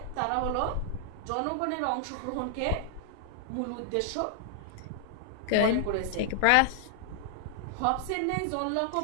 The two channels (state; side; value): different; both; correlation 0.00